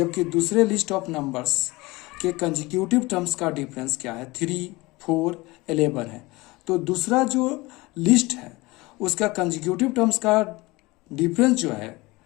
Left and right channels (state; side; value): quieter; right; 22.1 dB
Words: दूसरे लिस्ट ऑफ नंबर्स के कंजिक्यूटिव टर्म्स का डिफरेंस क्या है, 3, 4, 11 है। तो दूसरा जो लिस्ट है उसका कंजिक्यूटिव टर्म्स का डिफरेंस जो है